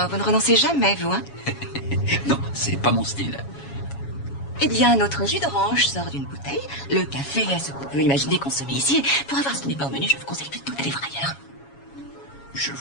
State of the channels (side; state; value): right; late; 7.2 ms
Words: vous ne renoncez jamais, vous, hein? Non, c'est pas mon style. Eh bien, notre jus d'orange sort d'une bouteille. Le café est ce qu'on peut imaginer consommer ici. Pour avoir ce qui n'est pas au menu, je vous conseille plutôt d'aller voir ailleurs. Je